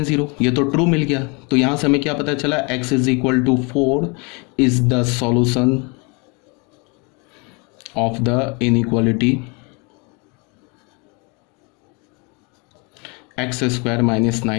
0, ये तो ट्रू मिल गया। तो यहाँ से हमें क्या पता चला, x is equal to 4 is the solution of the inequality x square minus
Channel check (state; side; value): quieter; right; 31.0 dB